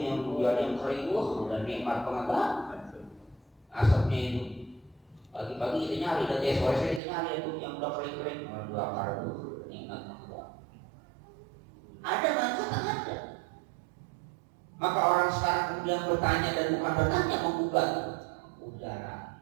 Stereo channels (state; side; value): drops out; left; at 7.0 s